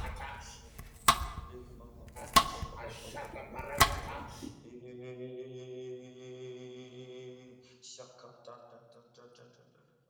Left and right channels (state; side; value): identical; both; correlation 1.00